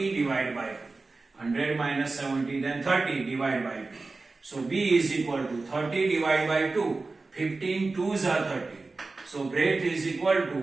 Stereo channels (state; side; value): quieter; left; 3.7 dB